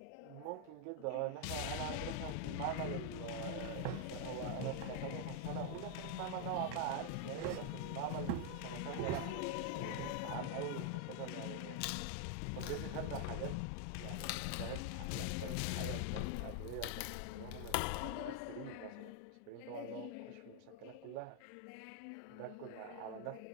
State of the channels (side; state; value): both; different; correlation 0.00